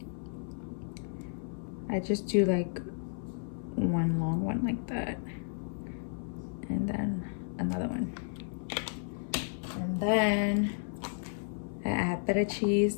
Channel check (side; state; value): right; silent; 56 dB below the other